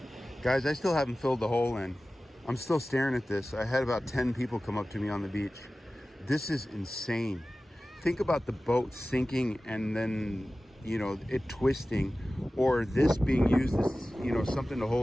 Guys, I still haven't filled the hole in. I'm still staring at this. I had about 10 people come up to me on the beach. This is insane. Think about the boat sinking and then, you know, it twisting, or this being used as, you know, something to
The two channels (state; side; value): normal; both; correlation 0.96